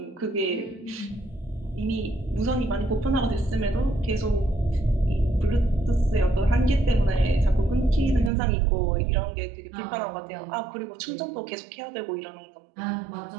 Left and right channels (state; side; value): drops out; left; at 8.3 s